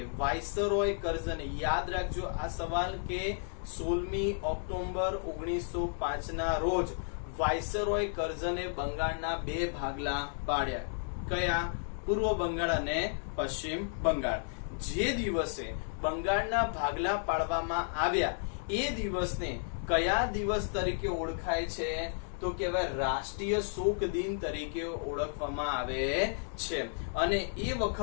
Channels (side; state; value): right; silent; digital silence